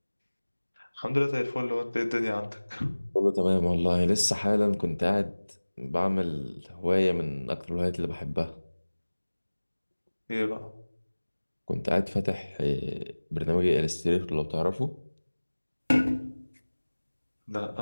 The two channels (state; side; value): inverted; both; correlation -1.00